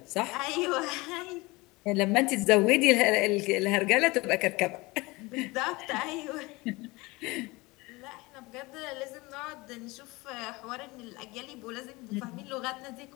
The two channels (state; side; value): quieter; right; 23.1 dB